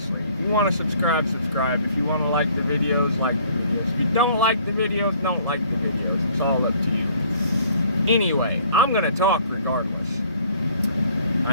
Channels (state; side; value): inverted; both; correlation -0.58